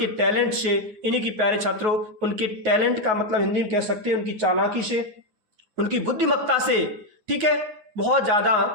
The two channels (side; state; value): left; late; 9.4 ms